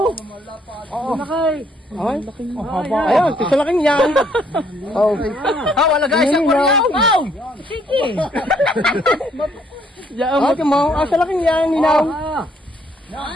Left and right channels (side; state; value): both; normal; correlation 0.67